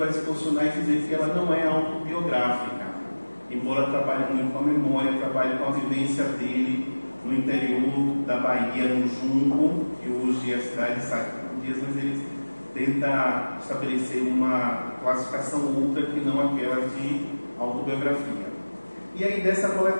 se posicionar e dizer que ela não é autobiográfica, embora trabalhe muito com a memória, trabalhe com a vivência dele no interior da Bahia, no Junco, que hoje é a cidade de Sacodias, mas ele tenta estabelecer uma classificação outra que não aquela de autobiografia. E aí, dessa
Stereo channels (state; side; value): inverted; both; correlation -1.00